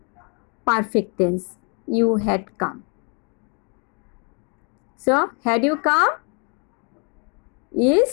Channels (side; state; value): right; quieter; 36.1 dB